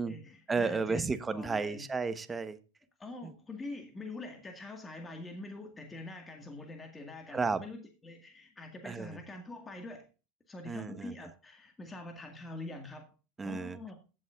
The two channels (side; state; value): left; quieter; 3.0 dB